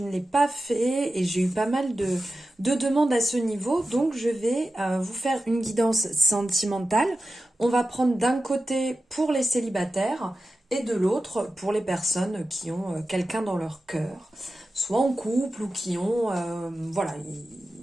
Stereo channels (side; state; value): both; normal; correlation 0.93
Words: l'ai pas fait et j'ai eu pas mal de demandes à ce niveau, donc je vais vous faire une guidance sentimentale. On va prendre d'un côté pour les célibataires et de l'autre pour les personnes qui ont quelqu'un dans leur cœur, soit en couple ou qui ont, voilà,